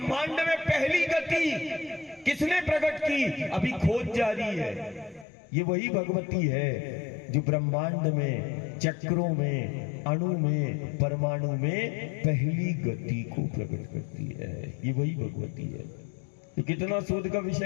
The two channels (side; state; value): right; drops out; at 5.2 s